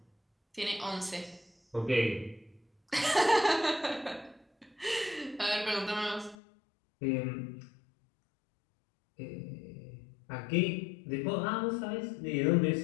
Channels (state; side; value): drops out; right; at 6.4 s